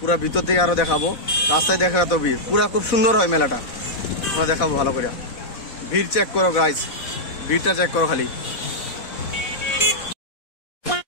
পুরা ভিতর থেকে আরো দেখাবো, রাস্তায় দেখা তো ভিড় পুরা খুব সুন্দর হয় মেলাটা, তোমরা দেখাবো ভালো করে। ভিড় চেক করো গাইস, ভিড়টা চেক করো খালি।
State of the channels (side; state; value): right; late; 4.1 ms